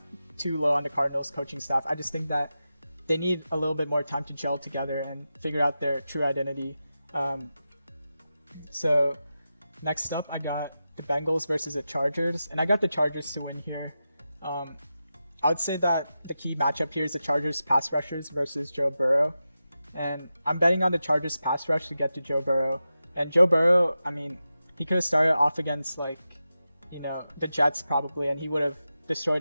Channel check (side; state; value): both; inverted; correlation -0.91